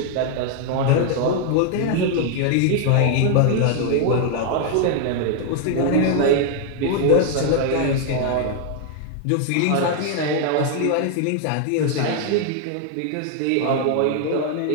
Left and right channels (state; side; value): different; both; correlation 0.00